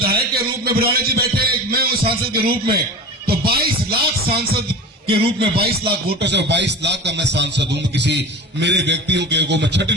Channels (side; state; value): both; normal; correlation 0.32